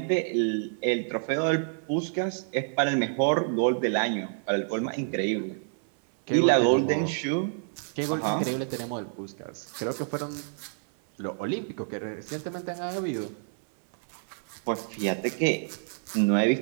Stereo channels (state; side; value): silent; left; 59 dB below the other